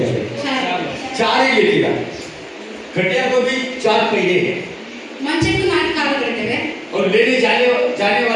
जाते हैं? 4 ही लेके जाते हैं। खटिया को भी 4 पहिए हैं, ಮಂಚಕ್ಕೂ 4 ಕಾಲುಗಳಿವೆ. और लेने जाने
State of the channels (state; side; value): identical; both; correlation 1.00